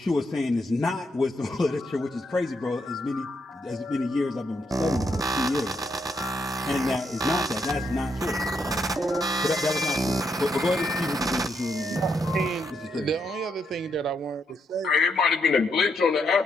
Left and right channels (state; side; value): normal; both; correlation 0.78